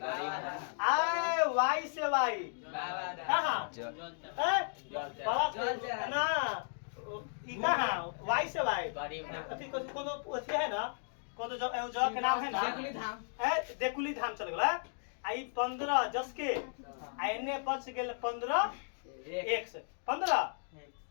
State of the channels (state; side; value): silent; right; digital silence